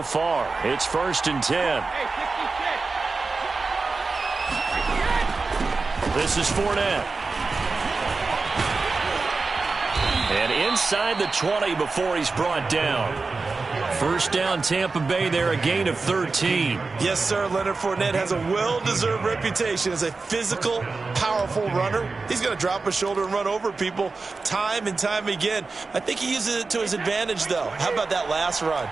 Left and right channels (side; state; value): left; quieter; 4.0 dB